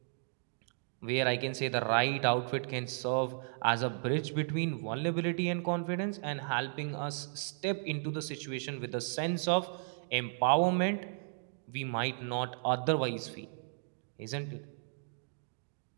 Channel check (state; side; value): silent; left; digital silence